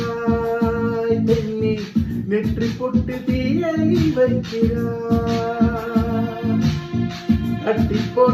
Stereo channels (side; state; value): both; identical; correlation 1.00